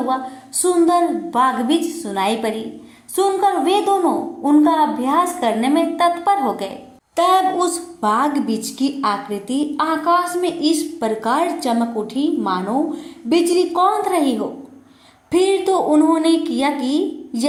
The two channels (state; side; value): identical; both; correlation 1.00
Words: सुंदर बागबीज सुनाई पड़ी। सुनकर वे दोनों उनका अभ्यास करने में तत्पर हो गए। तब उस बागबीज की आकृति आकाश में इस प्रकार चमक उठी मानो बिजली कौंध रही हो। फिर तो उन्होंने किया कि